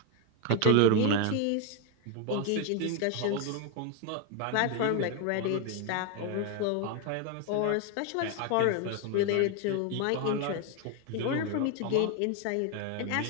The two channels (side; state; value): both; different; correlation 0.01